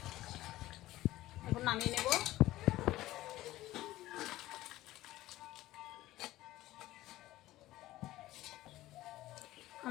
এখন নামিয়ে নেব।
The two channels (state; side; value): quieter; right; 16.2 dB